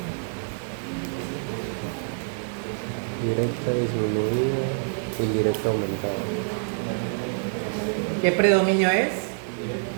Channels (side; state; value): left; silent; digital silence